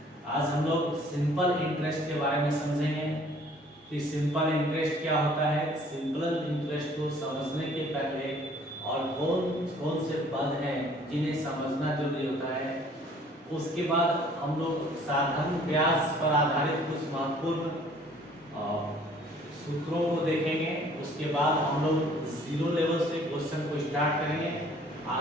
आज हम लोग सिंपल इंटरेस्ट के बारे में समझेंगे कि सिंपल इंटरेस्ट क्या होता है। सिंपल इंटरेस्ट को समझने के पहले और कौन कौन से पद हैं जिन्हें समझना जरूरी होता है, उसके बाद हम लोग साधारण ब्याज पर आधारित कुछ महत्वपूर्ण सूत्रों को देखेंगे। उसके बाद हम लोग जीरो लेवल से क्वेश्चन को स्टार्ट करेंगे।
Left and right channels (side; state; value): both; normal; correlation 0.56